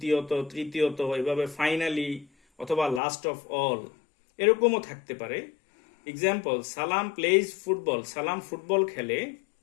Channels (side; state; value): right; drops out; at 3.0 s